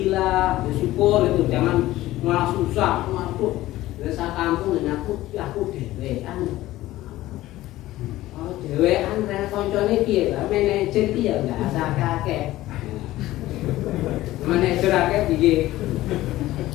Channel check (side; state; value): right; quieter; 16.1 dB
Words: bersyukur itu, jangan malah susah, waduh desa kampung dan aku dewean. Oh dewean rene koncone piye lah manajer piye enggak asal kakek. Manajer akeh piye.